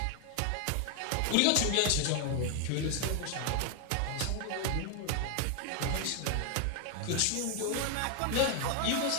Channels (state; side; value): different; both; correlation 0.01